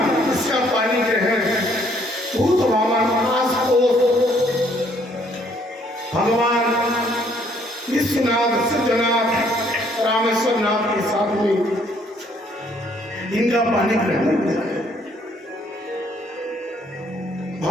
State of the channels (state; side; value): normal; both; correlation 0.65